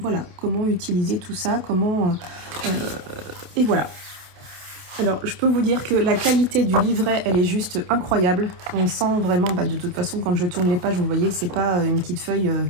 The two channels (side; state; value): left; late; 28 ms